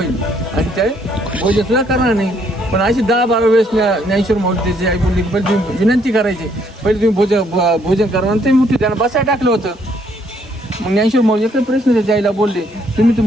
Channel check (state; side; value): normal; both; correlation 0.68